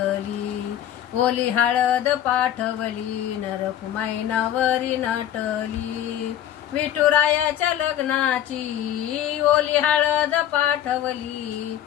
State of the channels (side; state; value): right; quieter; 11.1 dB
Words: ओली हळद पाठवली, नरकुमाई नवरी नटली, विठुरायाच्या लग्नाची ओली हळद पाठवली,